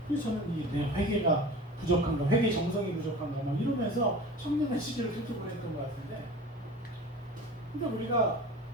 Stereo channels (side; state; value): both; normal; correlation 0.37